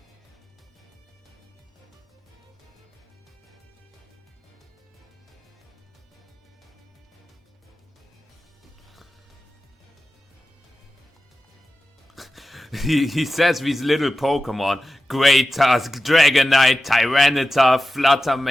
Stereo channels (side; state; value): both; normal; correlation 0.93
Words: He says these little Pokemon. Great Tusk, Dragonite, Tyranitar,